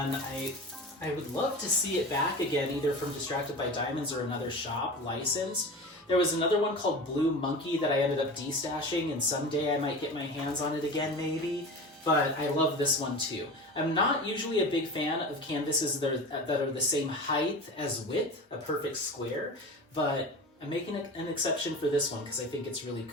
I would love to see it back again, either from Distracted by Diamonds or another shop licensed. There was another one called Blue Monkey that I ended up destashing, and someday I might get my hands on it again, maybe. But I love this one too. I'm not usually a big fan of canvases that are the same height as width, a perfect square, but I'm making an exception for this one because I think it's really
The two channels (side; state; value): both; normal; correlation 0.31